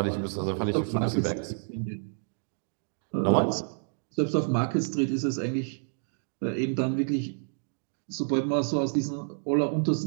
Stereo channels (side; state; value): left; silent; digital silence